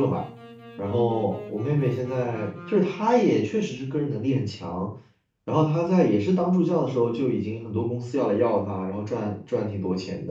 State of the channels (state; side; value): identical; both; correlation 1.00